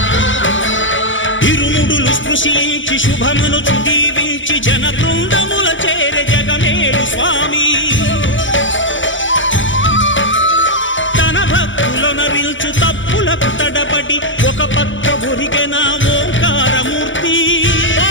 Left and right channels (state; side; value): late; right; 0.56 ms